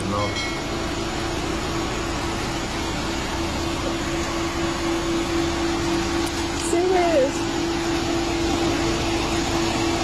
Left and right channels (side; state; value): both; identical; correlation 1.00